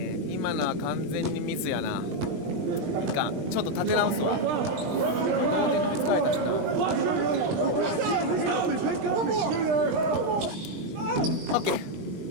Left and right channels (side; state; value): left; late; 20 ms